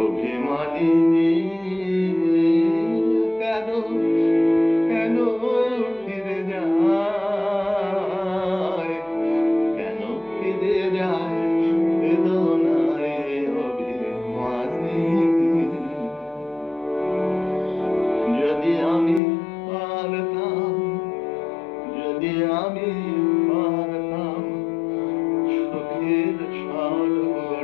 অভিমানী কেন, কেন ফিরে যায়? কেন ফিরে যায় বেদনায় অভিমানী? যদি আমি পারতাম, যদি আমি পারতাম সুখের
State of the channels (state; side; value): drops out; right; at 19.2 s